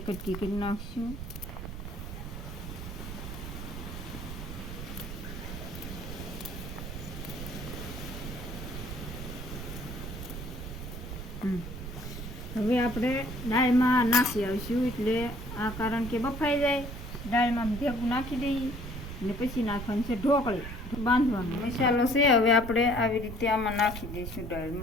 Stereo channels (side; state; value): right; noise; rumble, 8 dB below the sound